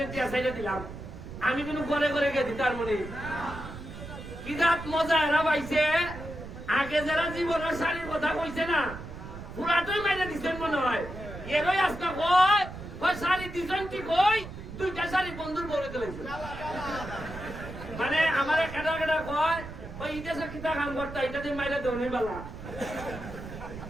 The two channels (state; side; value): noise; right; rumble, 11 dB below the sound